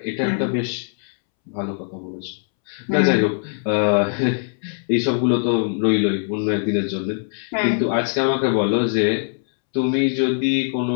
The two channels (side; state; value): right; silent; 65 dB below the other